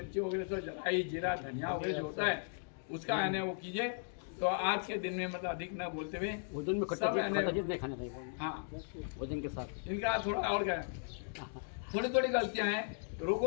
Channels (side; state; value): right; silent; digital silence